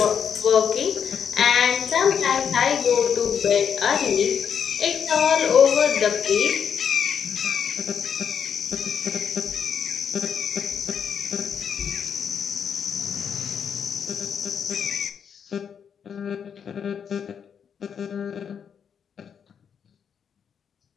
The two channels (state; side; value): quieter; right; 7.5 dB